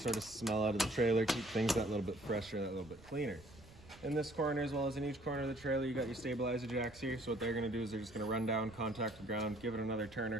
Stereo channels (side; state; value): right; noise; rumble, 22 dB below the sound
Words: of smell out of the trailer, keep things that little bit fresher, that little bit cleaner. In this corner, as well as in each corner of the trailer, you got your stabilizer jacks here. So what they're gonna do is they're just gonna run down, contact the ground, give it another turn or